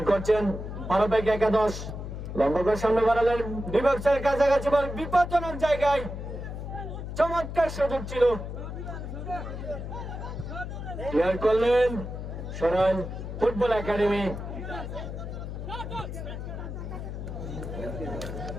করছেন 12/11। লম্বা করে সামনে বাড়ালেন, বিপক্ষের কাছাকাছি বল বিপজ্জনক জায়গায়। চমৎকার সুযোগ ছিল, ক্লিয়ার করলেন সরাইল ফুটবল একাডেমি।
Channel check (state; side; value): noise; left; hum, 7 dB below the sound